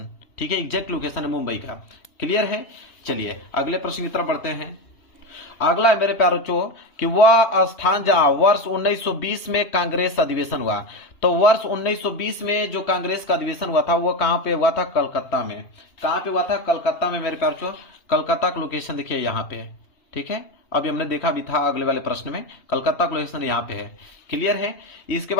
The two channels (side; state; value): right; late; 3.1 ms